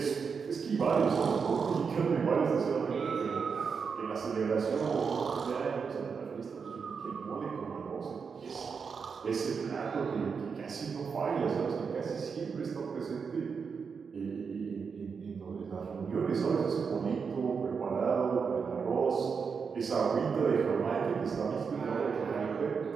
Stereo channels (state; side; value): quieter; left; 5.8 dB